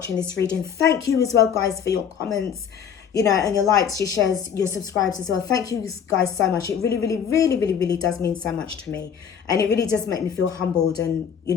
this reading. Thank you as well, guys, for your comments, and your likes, your shares, your subscribes as well. Thank you guys so much. It really, really, really, really, really does mean so much to me. And it really does make me feel humbled and,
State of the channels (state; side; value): quieter; right; 7.7 dB